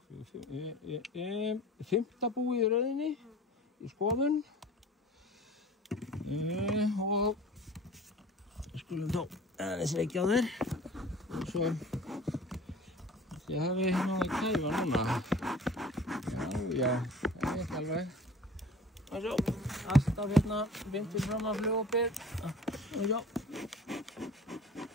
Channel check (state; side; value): normal; both; correlation 0.44